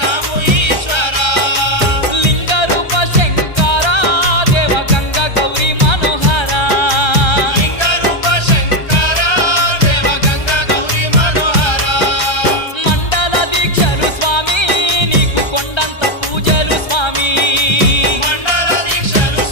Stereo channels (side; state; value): right; late; 1.3 ms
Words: ఈశ్వరా లింగ రూప శంకరా దేవ గంగ గౌరీ మనోహరా లింగ రూప శంకరా దేవ గంగ గౌరీ మనోహరా మండల దీక్షలు స్వామి నీకు కొండంత పూజలు స్వామి మండల